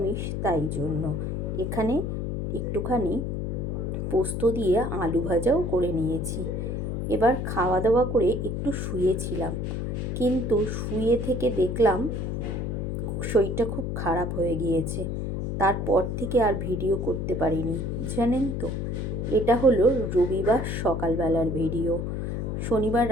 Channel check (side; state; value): left; noise; hum, 2 dB below the sound